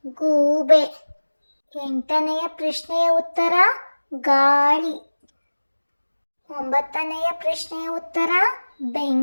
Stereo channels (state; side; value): inverted; both; correlation -1.00